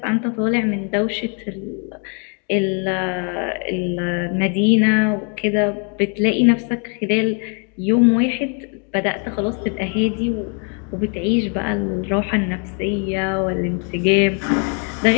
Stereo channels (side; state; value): right; quieter; 39.9 dB